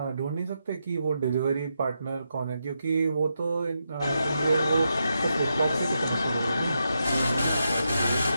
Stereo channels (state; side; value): inverted; both; correlation -0.84